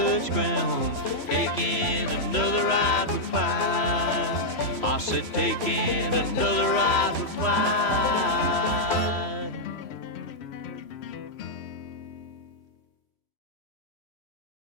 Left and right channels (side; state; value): right; late; 3.0 ms